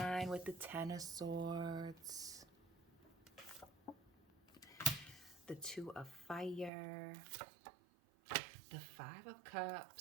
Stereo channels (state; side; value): drops out; left; at 6.7 s